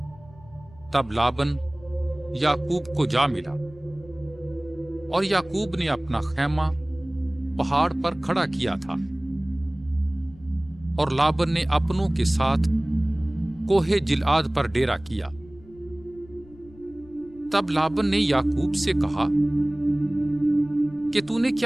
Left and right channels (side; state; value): left; noise; rumble, 23 dB below the sound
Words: تب لابن یعقوب کو جا ملا اور یعقوب نے اپنا خیمہ پہاڑ پر کھڑا کیا تھا اور لابن نے اپنوں کے ساتھ کوہ جلعاد پر ڈیرا کیا۔ تب لابن نے یعقوب سے کہا کہ تو نے